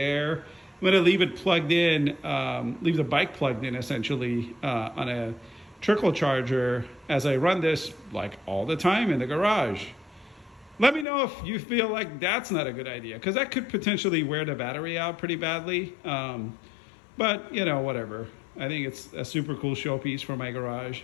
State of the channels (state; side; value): drops out; right; at 11.1 s